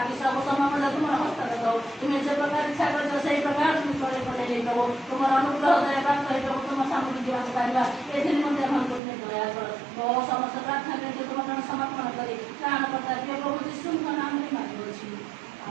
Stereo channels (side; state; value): left; drops out; at 9.0 s